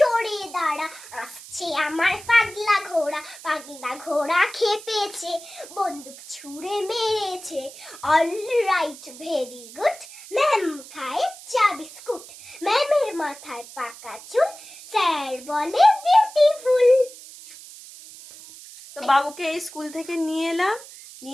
দাঁড়া, আসছে আমার পাগলা ঘোড়া খেপেছে, বন্দুক ছুঁড়ে মেরেছে, all right very good, ma'am খায় চা বিস্কুট, ম্যামের মাথায় পাকা চুল, স্যার বলে বিউটিফুল। তো বাবুকে এই স্কুল থেকে নিয়ে এলাম,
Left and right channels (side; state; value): right; noise; hiss, 17 dB below the sound